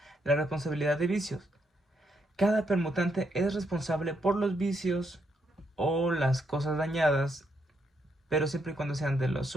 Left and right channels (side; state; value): both; normal; correlation 0.77